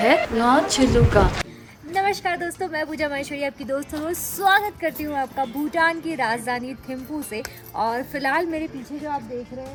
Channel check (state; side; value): identical; both; correlation 1.00